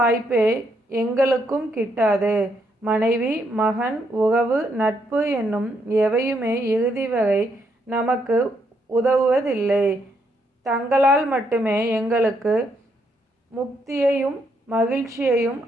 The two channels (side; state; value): both; normal; correlation 0.75